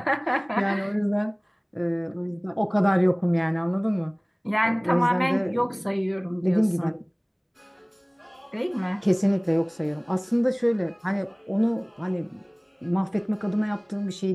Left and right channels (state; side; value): identical; both; correlation 1.00